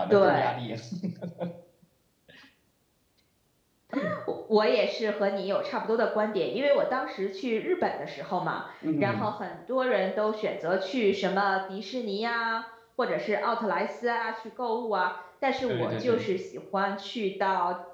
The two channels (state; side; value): identical; both; correlation 1.00